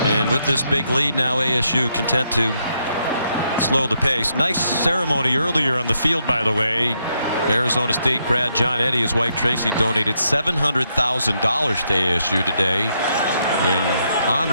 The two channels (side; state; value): both; inverted; correlation -0.78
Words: and with this big lead now, ASU content to slow the pace. Nice ceremony earlier on the field, by the way. Arizona State grad John Eddy, his wife Tracy, donated $700,000 to ASU today in